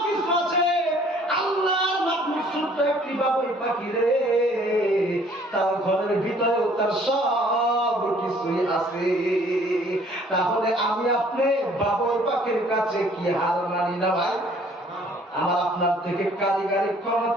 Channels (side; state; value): both; normal; correlation 0.58